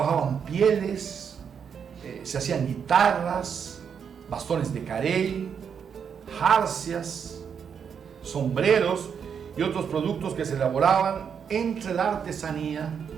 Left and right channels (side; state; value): left; quieter; 7.2 dB